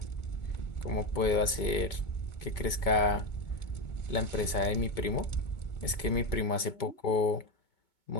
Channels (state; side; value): late; right; 2.2 ms